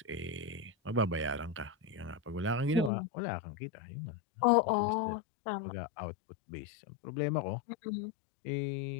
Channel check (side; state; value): right; drops out; at 2.9 s